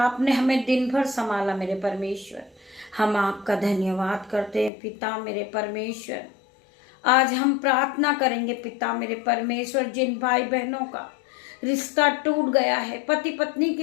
हमें दिन भर संभाला। मेरे परमेश्वर, हम आपका धन्यवाद करते हैं। पिता मेरे परमेश्वर, आज हम प्रार्थना करेंगे। पिता मेरे परमेश्वर, जिन भाई बहनों का रिश्ता टूट गया है, पति पत्नी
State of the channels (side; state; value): right; drops out; at 4.7 s